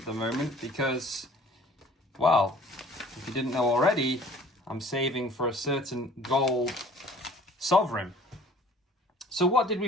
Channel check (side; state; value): both; normal; correlation 0.51